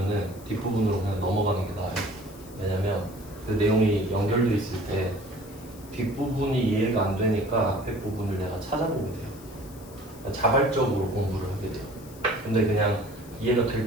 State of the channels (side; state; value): left; noise; hiss, 21 dB below the sound